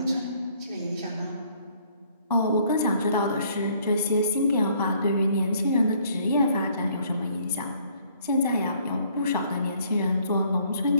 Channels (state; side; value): inverted; both; correlation -0.63